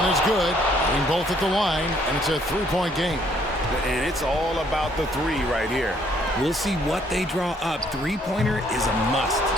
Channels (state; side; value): normal; both; correlation 0.65